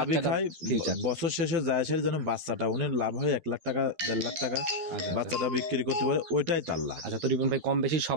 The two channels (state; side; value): late; left; 12 ms